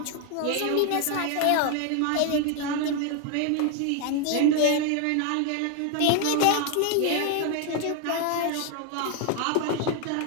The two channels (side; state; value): both; different; correlation 0.01